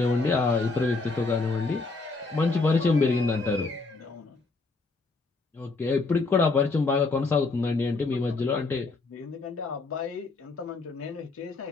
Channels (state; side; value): quieter; right; 3.8 dB